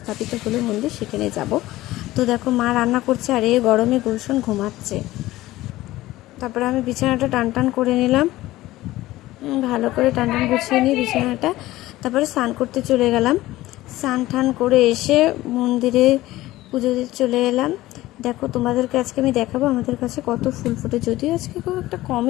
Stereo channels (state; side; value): quieter; right; 16.9 dB